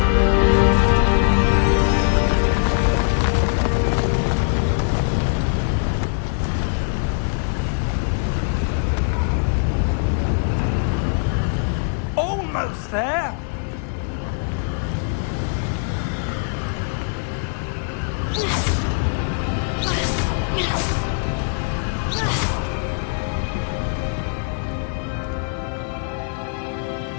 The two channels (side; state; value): right; silent; digital silence